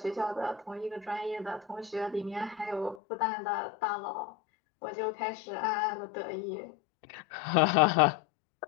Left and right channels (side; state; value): right; drops out; at 3.0 s